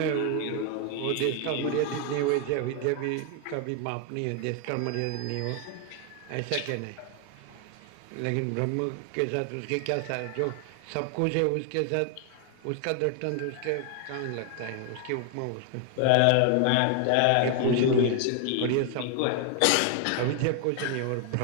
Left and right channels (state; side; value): different; both; correlation 0.00